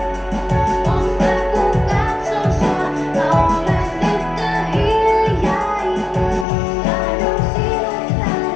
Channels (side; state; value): right; drops out; at 6.5 s